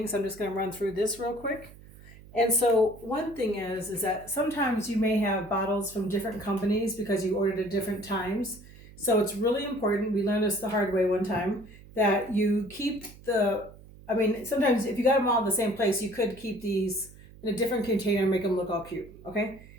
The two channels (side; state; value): right; noise; hum, 20 dB below the sound